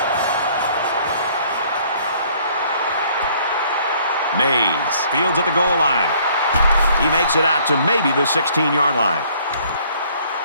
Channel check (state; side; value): inverted; both; correlation -0.59